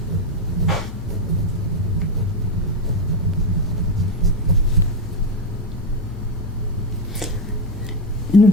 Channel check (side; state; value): both; normal; correlation 0.09